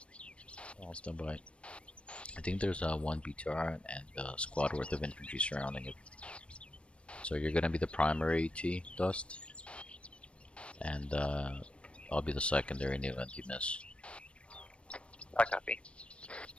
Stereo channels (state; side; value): late; right; 0.059 ms